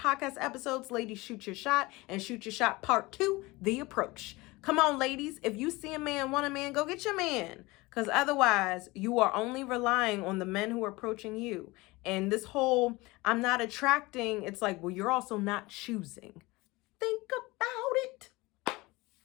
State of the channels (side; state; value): right; quieter; 22.1 dB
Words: episodes, Ladies Shoot Your Shot and Shoot Your Shot Part 2, The Approach. Come on, ladies. If you see a man, want a man, go get your man. Because otherwise, you are only relying on the men who are approaching you. And this whole, I'm not attracting, it's like, well, you're also not choosing. Think about it.